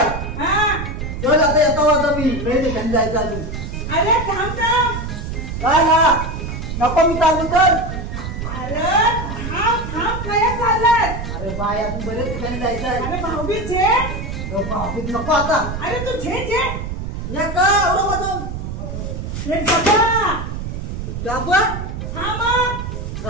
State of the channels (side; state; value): right; noise; rumble, 6 dB below the sound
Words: हा चल आता येतो. आता मी वेळ ठिकाणी जायचं अजून. अरे थांब थांब. काय ना नको मी चालू कर. अरे थांब थांब. काय चाललाय? अरे बाय अजून बरेच ठिकाणी जायचं आहे. अरे भाऊबी छे. भाऊबीज नको आता. अरे तू छे छे. या का एवढं वाजून रे बाबा डाबा. हा मग